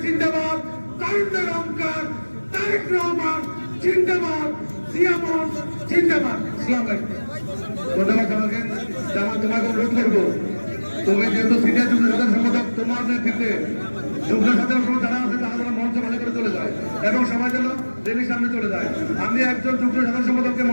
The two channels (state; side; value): inverted; both; correlation -1.00